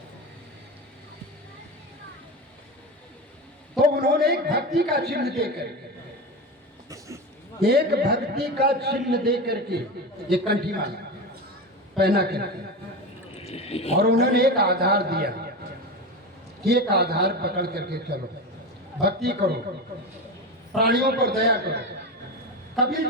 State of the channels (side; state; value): both; normal; correlation 0.22